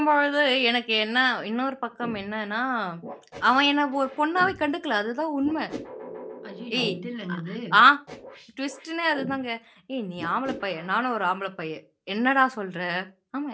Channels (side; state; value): both; identical; correlation 1.00